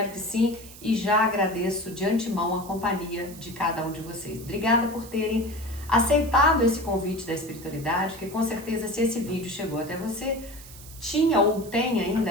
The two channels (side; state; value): right; noise; hiss, 17 dB below the sound